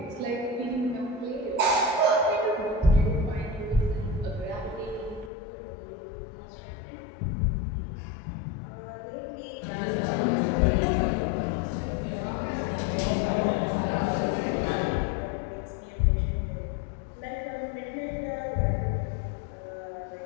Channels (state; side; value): drops out; right; at 5.3 s